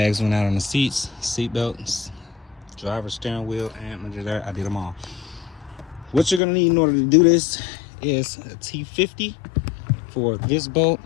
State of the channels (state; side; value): drops out; right; at 6.4 s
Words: went out on the seats, seat belts, driver's steering wheel, and under there, I did them all. What you're gonna need in order to do this is a T50 for this bolt,